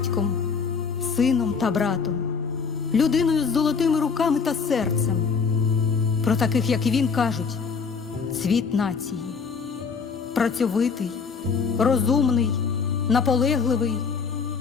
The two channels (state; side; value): quieter; right; 5.5 dB